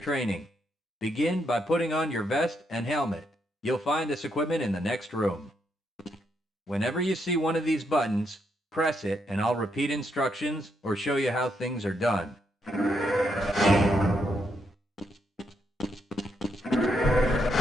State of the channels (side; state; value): both; normal; correlation 0.78